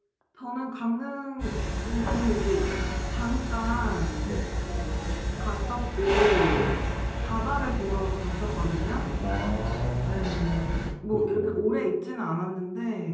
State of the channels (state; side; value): identical; both; correlation 1.00